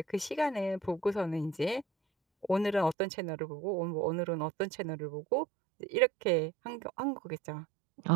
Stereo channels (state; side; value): drops out; left; at 3.0 s